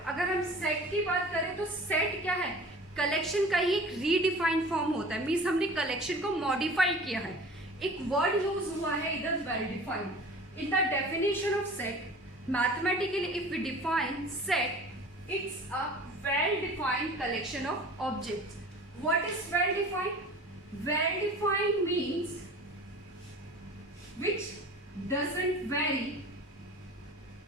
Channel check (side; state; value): both; normal; correlation 0.42